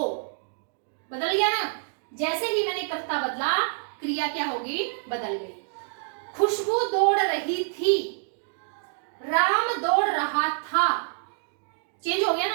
बदल गया ना। जैसे ही मैंने कर्ता बदला क्रिया क्या होगी, बदल गई। खुशबू दौड़ रही थी, राम दौड़ रहा था, चेंज हो गया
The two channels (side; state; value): left; silent; digital silence